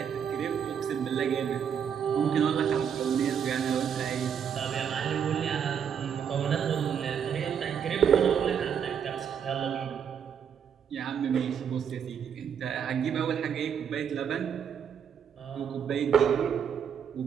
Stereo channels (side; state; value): left; quieter; 7.8 dB